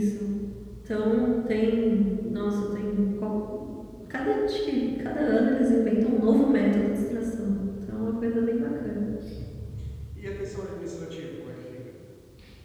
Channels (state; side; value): identical; both; correlation 1.00